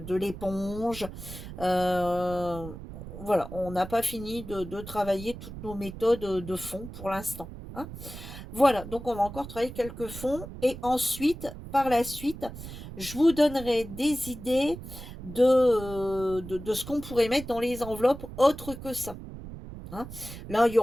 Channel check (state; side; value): noise; right; rumble, 12 dB below the sound